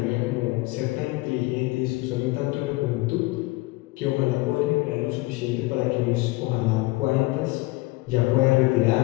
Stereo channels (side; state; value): right; quieter; 21.6 dB